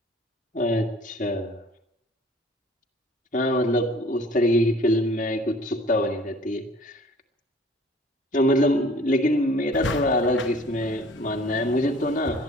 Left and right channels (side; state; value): both; normal; correlation 0.51